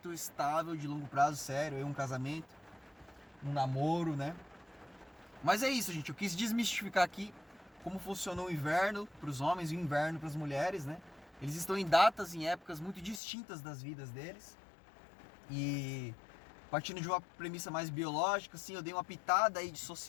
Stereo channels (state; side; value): drops out; right; at 13.2 s